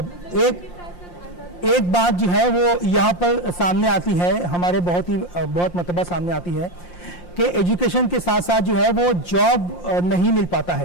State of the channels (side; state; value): right; late; 5.7 ms